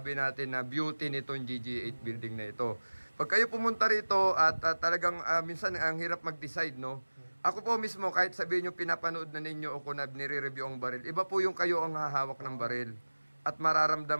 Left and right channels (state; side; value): inverted; both; correlation -1.00